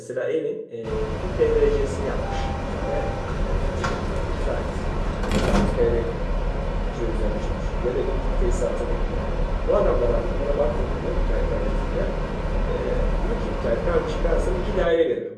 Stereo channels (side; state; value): both; identical; correlation 1.00